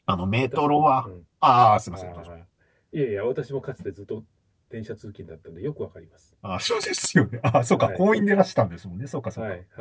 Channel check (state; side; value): identical; both; correlation 1.00